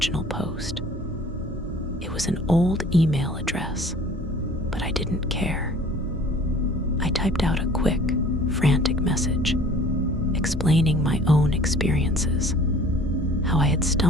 post. It was an old email address, but I didn't care. I typed out a quick, frantic message, explaining my own experiences, how I had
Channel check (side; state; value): both; normal; correlation 0.49